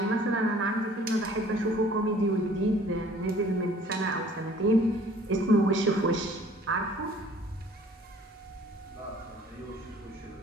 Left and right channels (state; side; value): normal; both; correlation 0.53